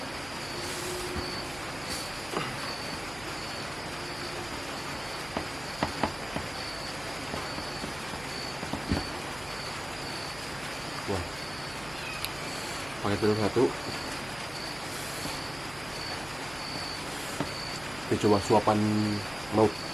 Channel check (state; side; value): noise; right; hum, 17 dB below the sound